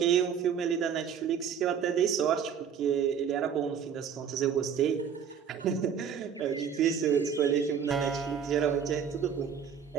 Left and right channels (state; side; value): quieter; left; 7.5 dB